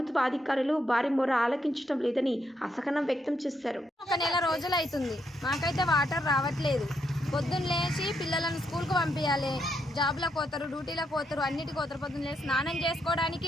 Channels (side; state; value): both; normal; correlation 0.78